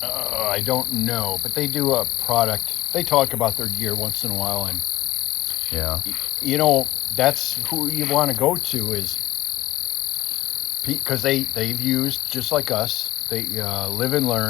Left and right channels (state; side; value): quieter; right; 16.2 dB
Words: I don't know, but they do a product. They talk about their gear once in a while, and Yeah. you know, that's who you want to go to, is because they've used, just like us, they live and